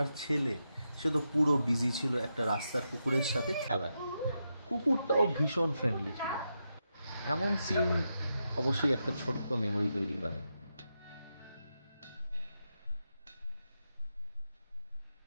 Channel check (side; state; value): both; inverted; correlation -0.86